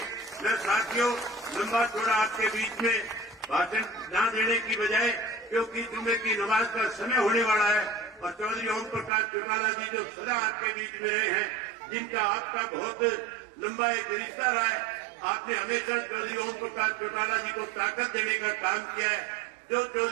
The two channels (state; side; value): drops out; left; at 9.1 s